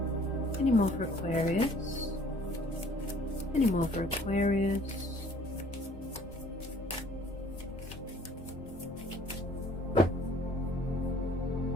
Any more for Aquarius? Any more for Aquarius?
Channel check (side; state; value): both; normal; correlation 0.55